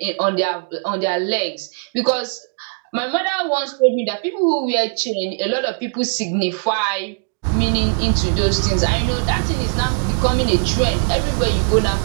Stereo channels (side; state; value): left; silent; 66 dB below the other